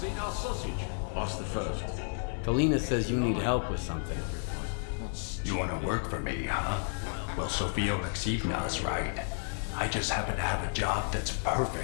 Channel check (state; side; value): silent; right; 57 dB below the other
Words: eat our sausage? Ask the first. Kalina says you need help with something. You want to work for me, huh? Well, Sofia Alexeyevna's right. I just happen to have a job that's